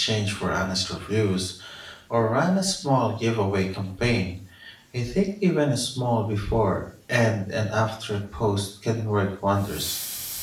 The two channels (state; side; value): identical; both; correlation 1.00